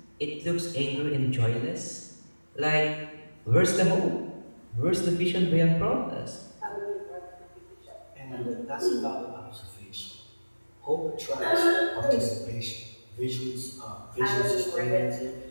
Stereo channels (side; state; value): both; inverted; correlation -1.00